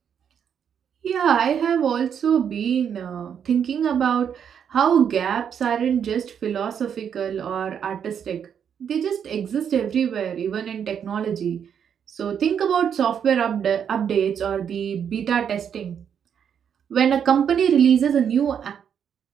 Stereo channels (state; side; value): quieter; left; 8.0 dB